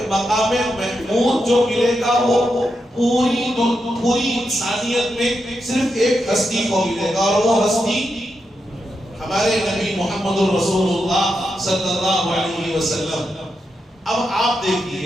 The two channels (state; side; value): normal; both; correlation 0.86